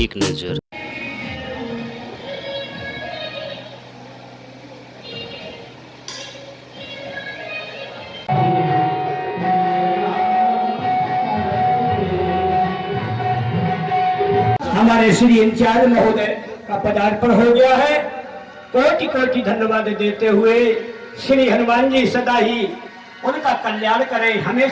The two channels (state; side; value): identical; both; correlation 1.00